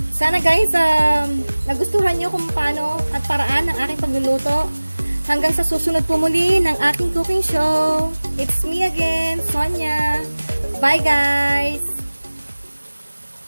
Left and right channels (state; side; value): inverted; both; correlation -1.00